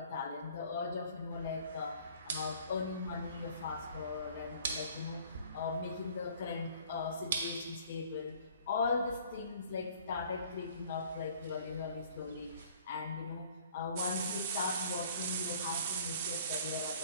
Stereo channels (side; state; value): both; inverted; correlation -0.54